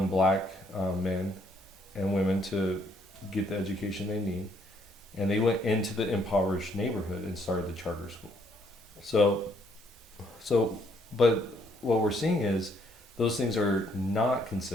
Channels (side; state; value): both; normal; correlation 0.69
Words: black men and women to get the education they need, and they went into the impoverished neighborhood and started the charter school. So, but what we're seeing is those things are not